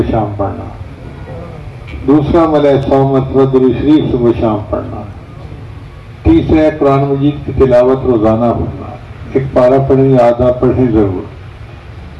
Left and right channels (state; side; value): identical; both; correlation 1.00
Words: شام پڑھنا، دوسرا عمل ہے 100 مرتبہ درود شریف صبح شام پڑھنا، تیسرا ہے قرآن مجید کی تلاوت روزانہ پڑھنا، ایک پارہ پڑھیں یا آدھا پڑھیں ضرور،